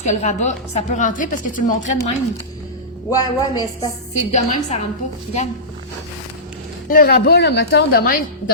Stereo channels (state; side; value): normal; both; correlation -0.18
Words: que le rabat, ça peut rentrer parce que tu le montrais de même. Ouais, mais c'est pas... C'est de même, ça rentre pas. Regarde. Le rabat, là, mettons, de